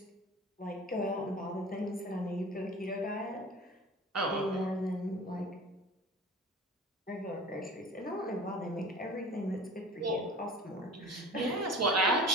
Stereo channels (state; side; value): normal; both; correlation 0.39